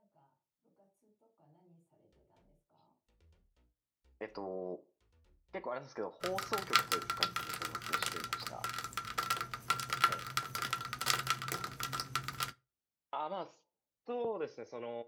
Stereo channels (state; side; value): identical; both; correlation 1.00